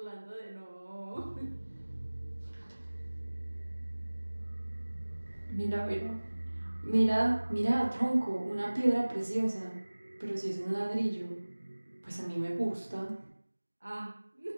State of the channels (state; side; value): inverted; both; correlation -1.00